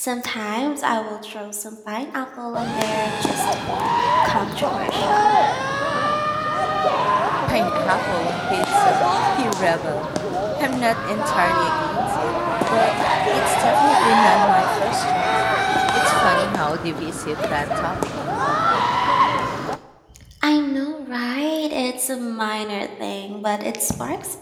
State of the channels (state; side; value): identical; both; correlation 1.00